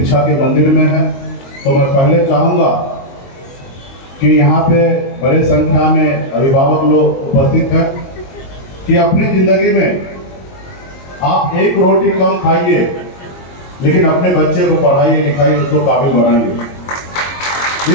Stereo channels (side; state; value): right; late; 22 ms